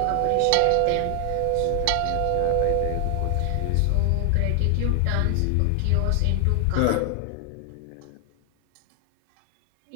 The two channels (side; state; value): both; different; correlation 0.00